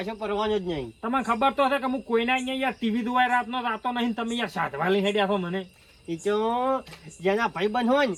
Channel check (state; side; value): identical; both; correlation 1.00